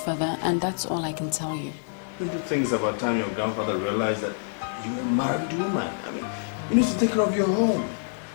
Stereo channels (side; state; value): right; silent; digital silence